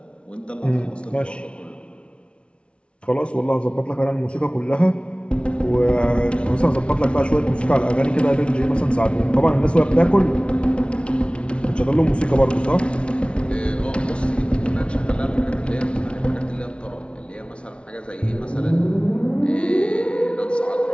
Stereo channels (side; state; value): right; late; 0.059 ms